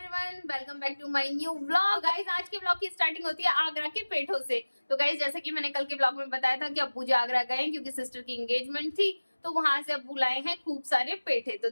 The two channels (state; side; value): inverted; both; correlation -1.00